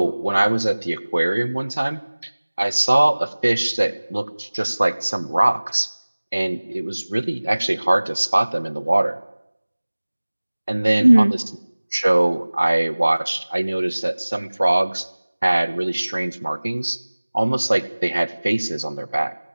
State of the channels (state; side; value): inverted; both; correlation -1.00